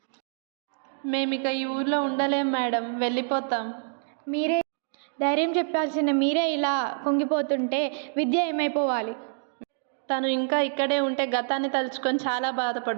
మేమిక ఈ ఊర్లో ఉండలేం మేడం, వెళ్ళిపోతాం. మీరే ధైర్యం చెప్పాల్సిన మీరే ఇలా కుంగిపోతుంటే విద్య ఏమైపోవాలి? తను ఇంకా ఇక్కడే ఉంటే గతాన్ని తలుచుకొని చాలా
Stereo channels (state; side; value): silent; left; digital silence